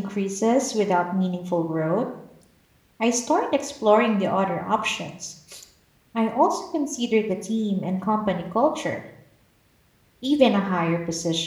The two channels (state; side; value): identical; both; correlation 1.00